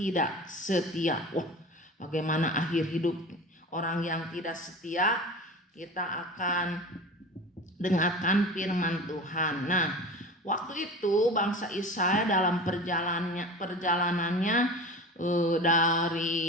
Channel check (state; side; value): normal; both; correlation 0.34